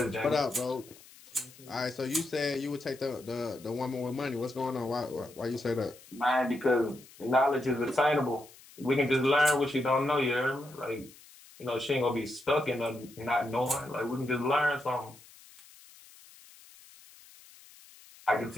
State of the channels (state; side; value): noise; left; hiss, 22 dB below the sound